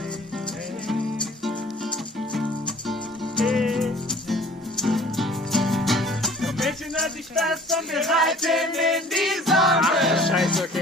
Mädchen, halt dich fest und wir reiten in die Sonne. Ach, Scheiße,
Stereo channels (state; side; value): normal; both; correlation 0.50